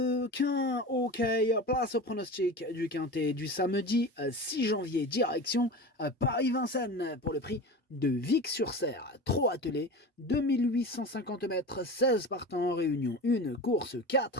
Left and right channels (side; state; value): both; normal; correlation 0.30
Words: Ok, place au pronostic du quintet du samedi 6 janvier, direction Paris-Vincennes pour le prix de Vic-sur-Serre. Trop attelé, 2850 mètres, 16 partants en réunion, une course